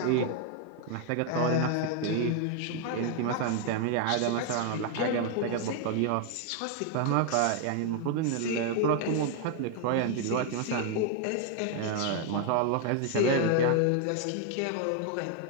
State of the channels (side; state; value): both; different; correlation 0.00